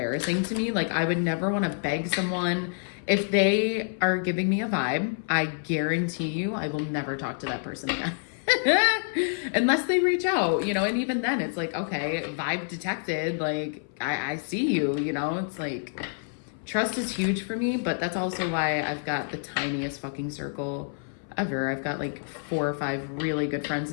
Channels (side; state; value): right; silent; 57 dB below the other